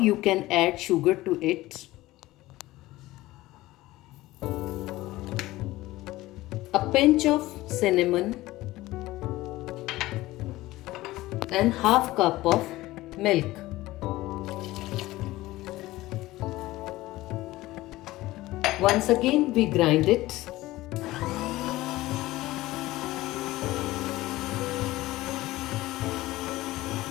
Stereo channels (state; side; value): quieter; right; 17.7 dB